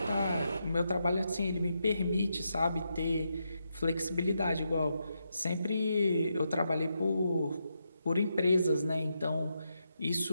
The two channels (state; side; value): inverted; both; correlation -0.84